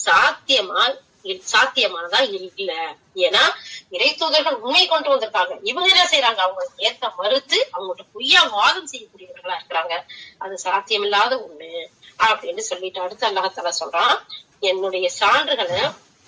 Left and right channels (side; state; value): both; identical; correlation 1.00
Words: சாத்தியமானதா இல்ல. ஏன்னா இறை தூதர்கள் உண்மை கொண்டு வந்திருக்காங்க, இவங்க என்ன செய்யறாங்க, அவங்க ஏற்க மறுத்து அவங்கள்ட்ட பொய்யா வாதம் செய்யக்கூடியவர்களா இருக்கிறாங்க. அது சாத்தியமில்லாத ஒண்ணு அப்படின்னு சொல்லிட்டு அடுத்து அல்லாஹ் தஆலா சொல்றான், என்னுடைய சான்றுகளை